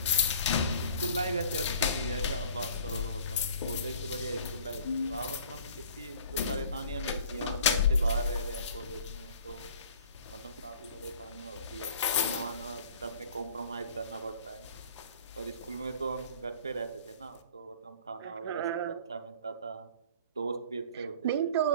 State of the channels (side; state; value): both; inverted; correlation -0.48